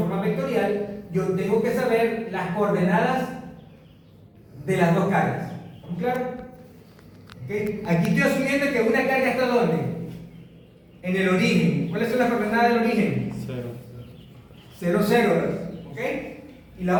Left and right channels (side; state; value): both; identical; correlation 1.00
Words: vectorial, yo tengo que saber las coordenadas de las dos cargas. ¿Estamos claros? ¿Okay? Aquí estoy asumiendo que una carga está ¿dónde? En el origen. ¿Cuáles son las coordenadas del origen? 0, 0. ¿Ok? Y la